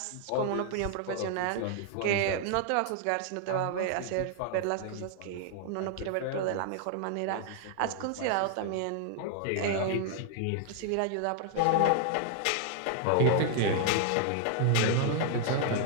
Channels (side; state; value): both; different; correlation -0.01